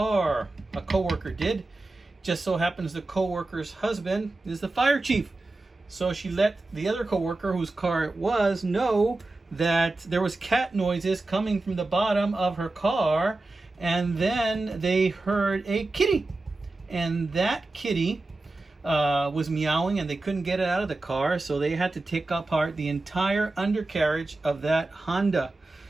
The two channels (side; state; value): left; quieter; 3.1 dB